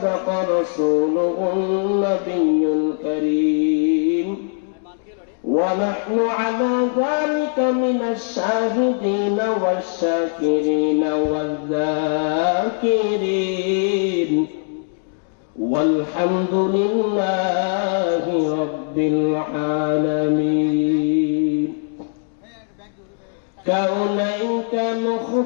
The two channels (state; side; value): silent; right; 65 dB below the other